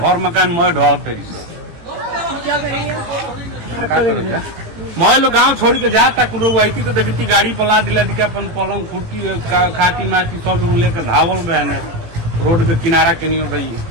मकान मैं ढह तरी से क्या करेंगे? का करेगा? मैं लोग गाँव छोड़ के जाता कुल वही तो देखती गाड़ी पला दिला के अपन पलंग खुर्टी खाटी माटी सब लोग लेकर धावल बहन रोड के किनारा के नहीं हो गई।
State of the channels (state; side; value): late; left; 18 ms